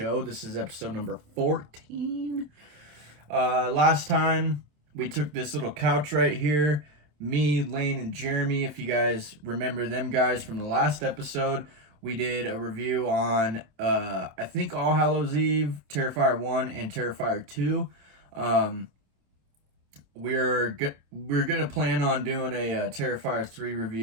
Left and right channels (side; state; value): left; late; 27 ms